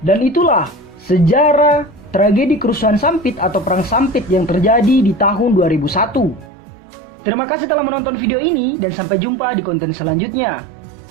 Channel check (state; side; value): drops out; left; at 6.5 s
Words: itulah sejarah tragedi kerusuhan Sampit atau Perang Sampit yang terjadi di tahun 2001. Terima kasih telah menonton video ini dan sampai jumpa di konten selanjutnya.